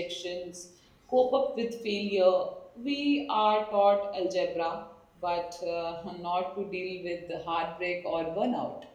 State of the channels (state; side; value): identical; both; correlation 1.00